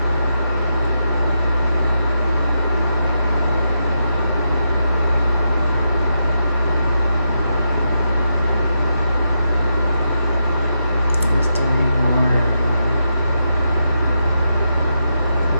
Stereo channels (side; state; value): both; inverted; correlation -0.84